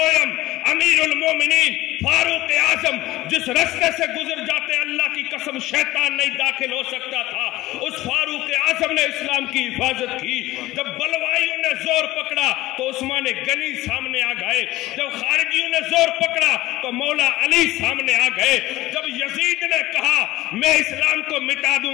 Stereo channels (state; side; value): quieter; right; 17.5 dB